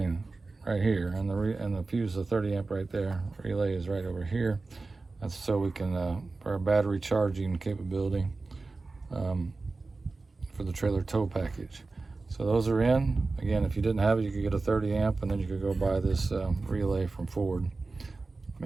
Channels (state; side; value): quieter; left; 3.7 dB